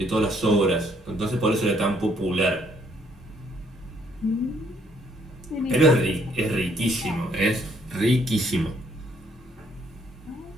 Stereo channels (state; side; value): normal; both; correlation 0.67